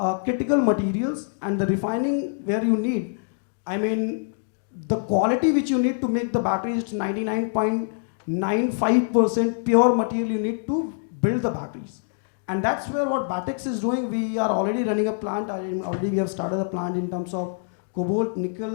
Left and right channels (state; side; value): silent; right; digital silence